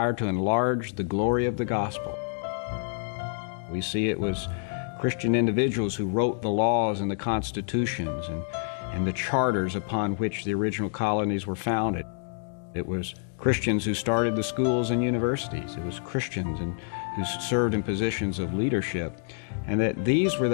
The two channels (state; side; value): silent; right; digital silence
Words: to enlarge the glory of the gospel. We see it was Christian individuals who wrote the laws and the constitutions and the charters upon which the original colonies were founded. It was Christians who started the schools and universities. It was Christians who served in positions of leadership. And that these were